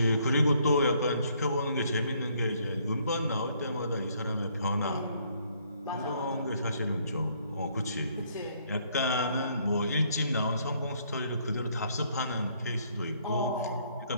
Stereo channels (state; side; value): inverted; both; correlation -0.67